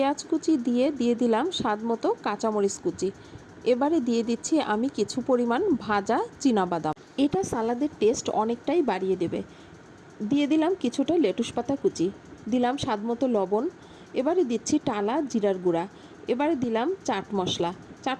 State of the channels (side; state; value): both; identical; correlation 1.00